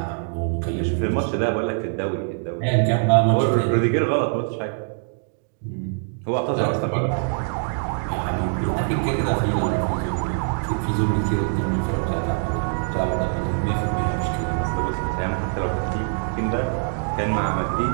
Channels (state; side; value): silent; left; 63 dB below the other